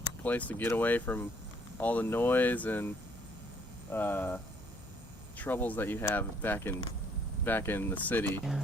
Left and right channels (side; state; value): both; normal; correlation 0.64